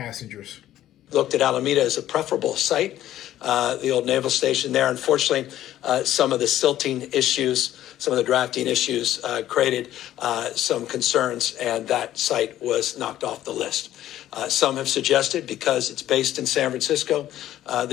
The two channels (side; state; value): right; quieter; 12.9 dB